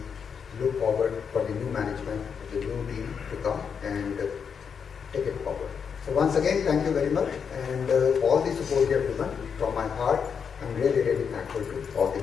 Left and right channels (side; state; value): right; quieter; 6.7 dB